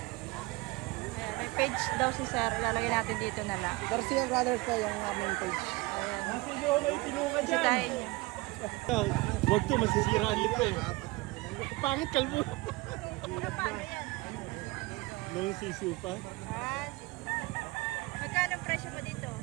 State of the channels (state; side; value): quieter; left; 22.6 dB